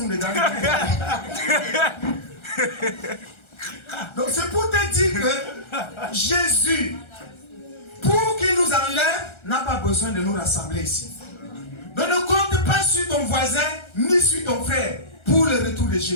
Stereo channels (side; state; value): right; late; 1.3 ms